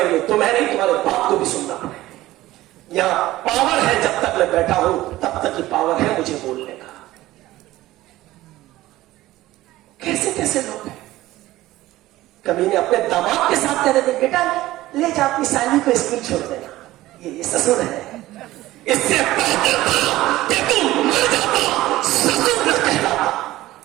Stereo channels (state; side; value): quieter; left; 16.5 dB